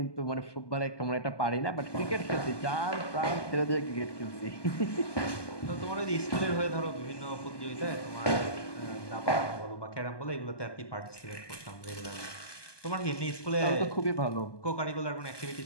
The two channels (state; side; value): late; right; 1.2 ms